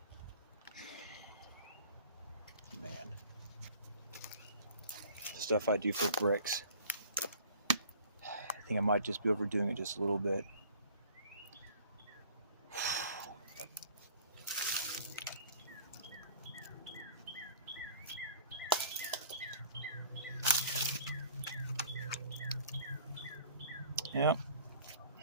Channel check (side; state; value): both; inverted; correlation -0.49